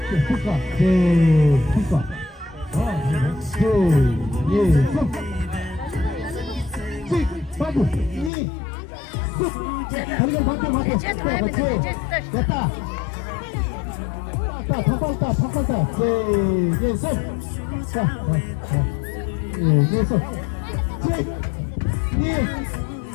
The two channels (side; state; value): right; drops out; at 8.3 s